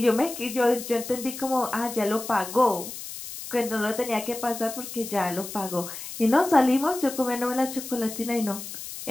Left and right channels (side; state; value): left; noise; hiss, 10 dB below the sound